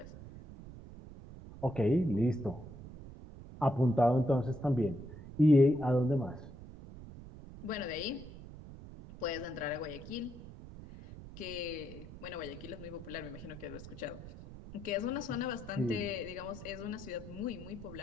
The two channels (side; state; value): right; noise; rumble, 14 dB below the sound